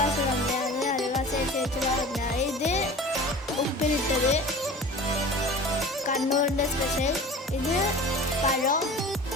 തന്നെയാണ്, അയൽവാസി ചേച്ചി പറഞ്ഞ. ഇത് ഉപ്പിലിട്ടത്, കണ്ണൂരിൻ്റെ സ്പെഷ്യൽ. ഇത് പഴം,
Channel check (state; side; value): normal; both; correlation 0.39